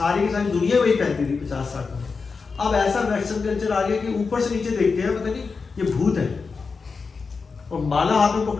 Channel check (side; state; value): right; quieter; 4.8 dB